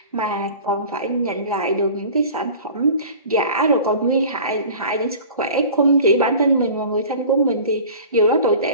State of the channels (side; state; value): both; inverted; correlation -0.41